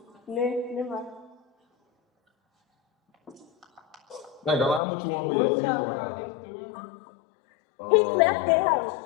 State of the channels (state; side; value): drops out; right; at 4.8 s